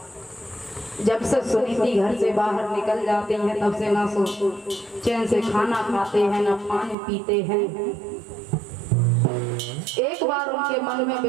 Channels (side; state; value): left; drops out; at 7.0 s